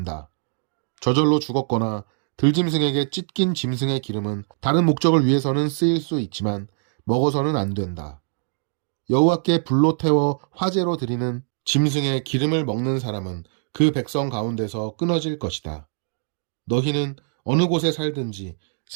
저절로 죽었거나 들짐승에게 찢긴 짐승의 기름은 다른 목적을 위해서는 쓰일 수 있지만 먹어서는 안 된다. 여호와께 불로 태워 화제로 드리는 짐승의 기름을 먹는 사람은 그 백성 가운데서 끊어질 것이다. 너희는 어느 곳에 살든지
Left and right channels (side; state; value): left; silent; 63 dB below the other